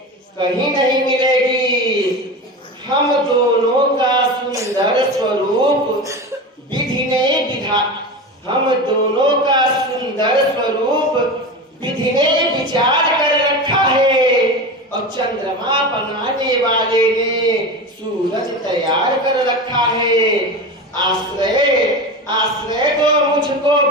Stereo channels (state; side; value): normal; both; correlation 0.26